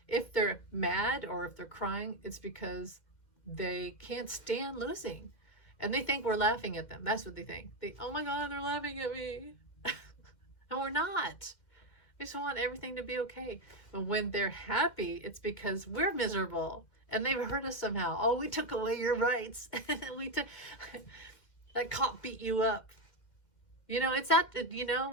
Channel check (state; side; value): late; right; 2.1 ms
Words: if they're mad or if they're crying, it's because they can't stand losing. And they think we're laughing at them. That's what they think. Oh my God, they're laughing at me. And we're not. We just want everything to be okay. But when they're happy, it's because we're miserable and they've hurt us somehow. Oh, we took away your rights. That cop beat you up. You know, it's that, you know